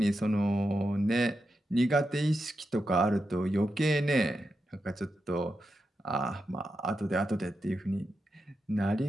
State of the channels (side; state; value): both; normal; correlation 0.87